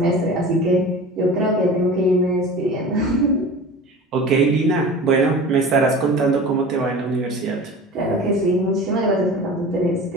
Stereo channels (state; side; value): normal; both; correlation 0.37